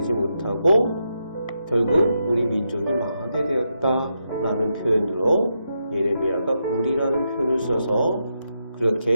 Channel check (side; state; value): both; inverted; correlation -0.84